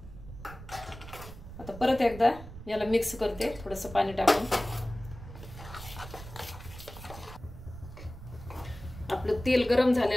आता परत एकदा याला मिक्स करते थोडंसं पाणी टाकून. आपलं तेल गरम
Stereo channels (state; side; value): noise; right; rumble, 14 dB below the sound